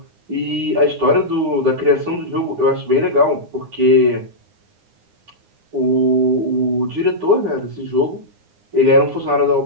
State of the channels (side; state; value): left; late; 9.7 ms